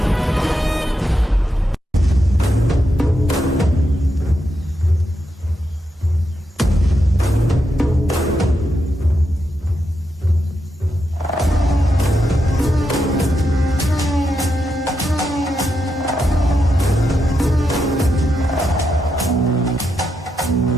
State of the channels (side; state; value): both; normal; correlation 0.84